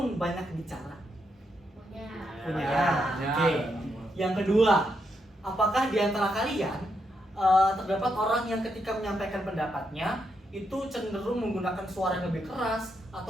banyak bicara? Punya. Punya. Ya. Oke. Yang kedua, apakah di antara kalian terdapat orang yang ketika menyampaikan pendapatnya itu cenderung menggunakan suara yang lebih keras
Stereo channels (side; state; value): both; normal; correlation 0.80